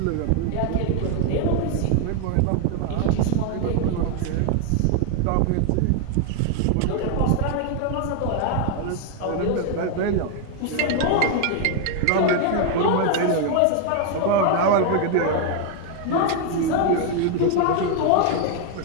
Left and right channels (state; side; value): different; both; correlation 0.00